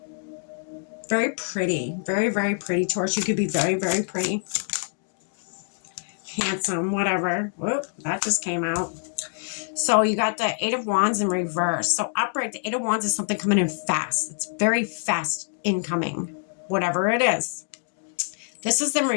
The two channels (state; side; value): silent; right; 61 dB below the other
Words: Very pretty. Very pretty, Taurus. You could be very pretty. Handsome, whatever. Whoop, that just came out. So you got the Eight of Wands in reverse. So upright, the Eight of Wands is something coming in fast. It's very fast incoming, whatever it is. This is in